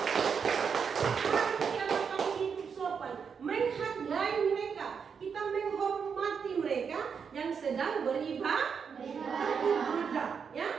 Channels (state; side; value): quieter; left; 6.4 dB